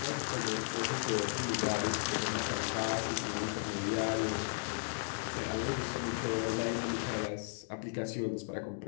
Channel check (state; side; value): silent; right; digital silence